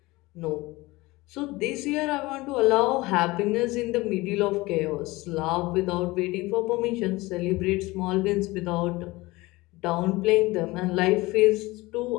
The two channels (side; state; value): right; quieter; 21.1 dB